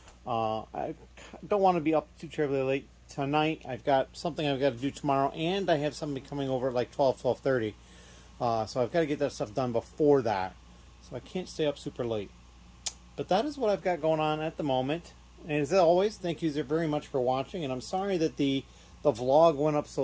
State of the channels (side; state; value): both; identical; correlation 1.00